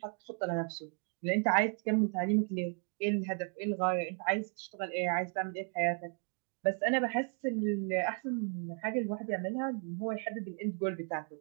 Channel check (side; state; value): left; quieter; 39.6 dB